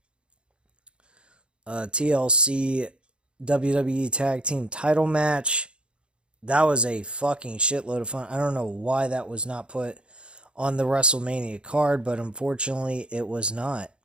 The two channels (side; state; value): left; late; 0.055 ms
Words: TLC WWE Tag Team title match. That was a fucking shitload of fun. I don't know why that was not put on the WrestleMania card, but unfortunately it was not.